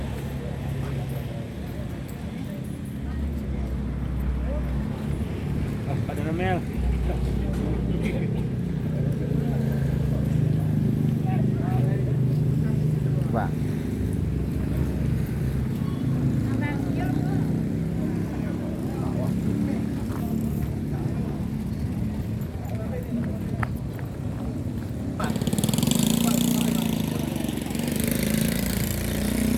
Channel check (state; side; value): identical; both; correlation 1.00